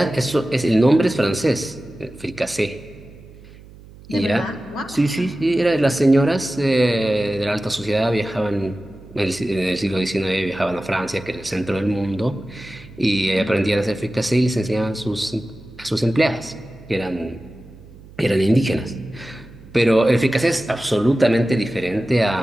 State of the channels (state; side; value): noise; right; hum, 21 dB below the sound